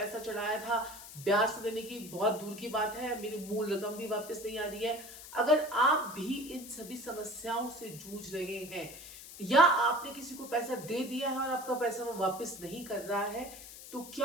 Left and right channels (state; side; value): noise; left; hiss, 14 dB below the sound